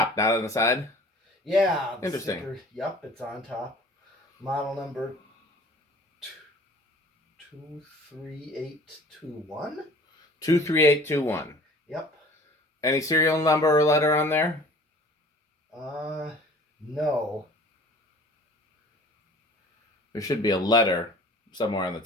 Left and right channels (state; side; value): normal; both; correlation 0.47